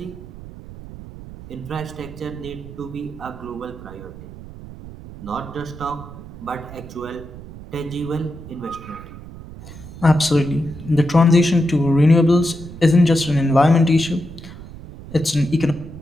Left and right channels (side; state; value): right; noise; rumble, 15 dB below the sound